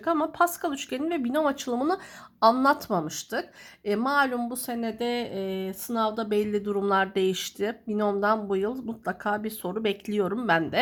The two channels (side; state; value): both; identical; correlation 1.00